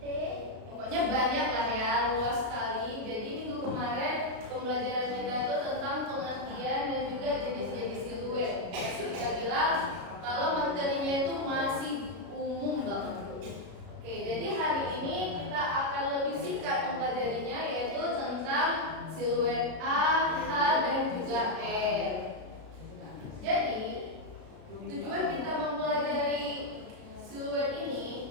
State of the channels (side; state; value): left; late; 33 ms